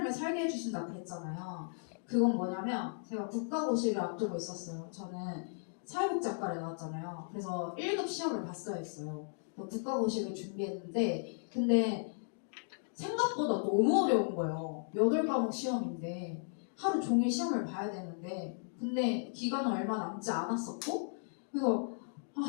살게 해주신다고 그랬잖아요. 그건 뭐냐면 제가 국가고시를 앞두고 있었어요. 저는 사회복지학과를 나왔잖아요. 그래서 1급 시험을 봤어야 했어요. 국가고시를 준비했는데 근데 생각보다 너무 어려운 거예요. 8과목 시험인데 하루 종일 시험을 봐야 되는데 근데 기간은 얼마 남지 않았었고 그래서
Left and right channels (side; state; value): right; silent; digital silence